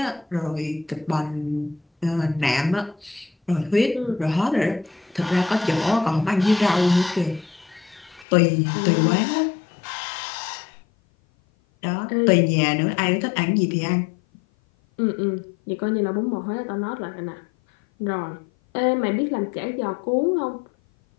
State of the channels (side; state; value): right; drops out; at 8.2 s